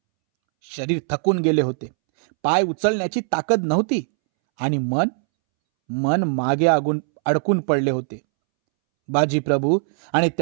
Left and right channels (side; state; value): left; silent; 65 dB below the other